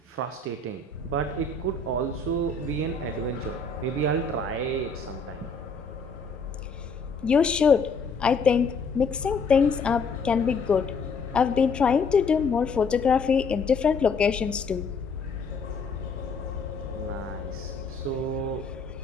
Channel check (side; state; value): right; quieter; 4.3 dB